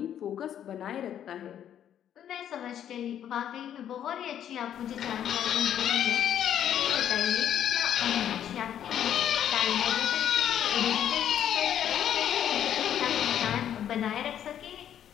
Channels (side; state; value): right; quieter; 10.0 dB